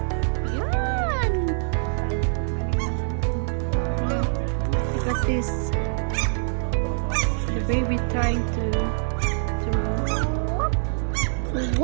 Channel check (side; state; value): left; silent; 62 dB below the other